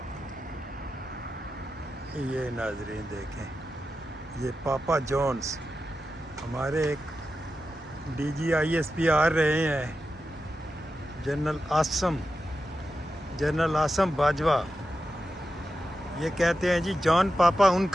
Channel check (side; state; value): both; normal; correlation 0.91